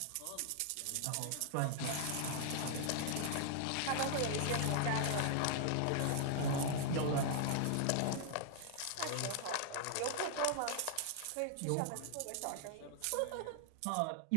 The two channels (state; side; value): different; both; correlation 0.00